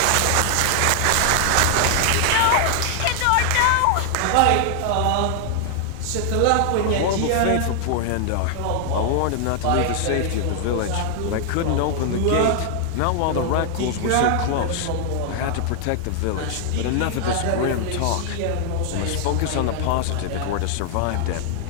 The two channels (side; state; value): both; different; correlation 0.00